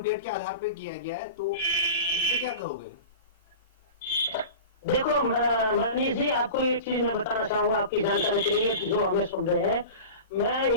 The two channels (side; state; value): both; inverted; correlation -0.33